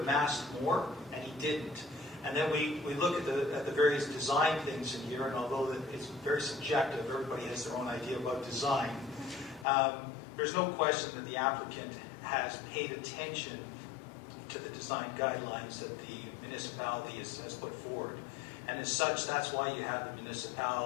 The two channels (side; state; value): right; drops out; at 9.7 s